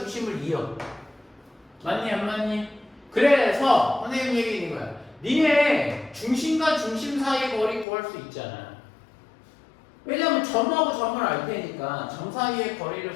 이어. 맞니 안 맞니? 그래서 선생님 얘기인 거야. 니네 중심과 중심 사이의 거리 구할 수 있잖아. 왜냐면 점하고 점을 알 테니까 점 사이의 거리를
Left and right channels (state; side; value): drops out; right; at 7.9 s